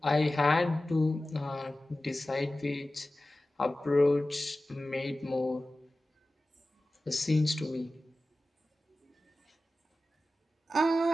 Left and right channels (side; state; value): both; normal; correlation 0.95